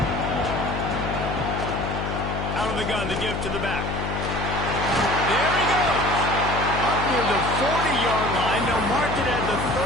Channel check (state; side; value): noise; left; hum, 4 dB below the sound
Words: Out of the gun to give to the back. There he goes. Up near the 40-yard line. They'll mark it at the